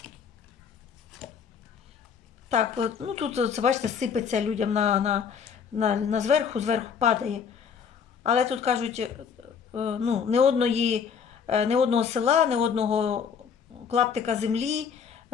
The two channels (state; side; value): quieter; right; 6.8 dB